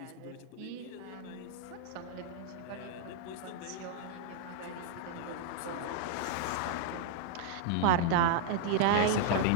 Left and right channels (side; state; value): both; different; correlation -0.01